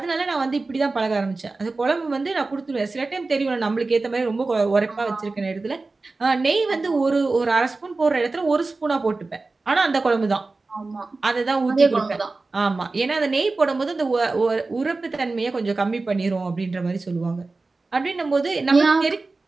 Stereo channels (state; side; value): quieter; left; 3.6 dB